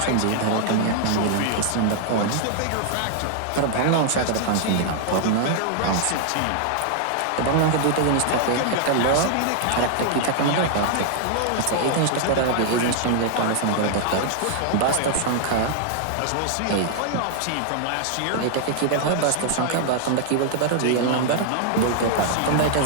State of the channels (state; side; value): different; both; correlation 0.00